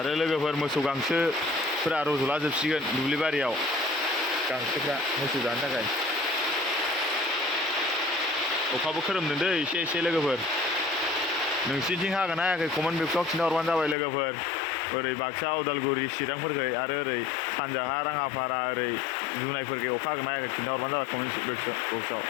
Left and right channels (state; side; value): drops out; right; at 14.0 s